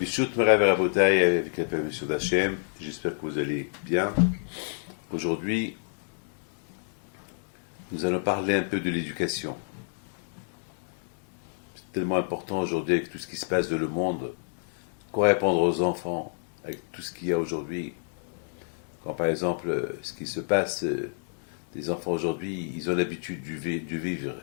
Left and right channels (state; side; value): silent; right; 59 dB below the other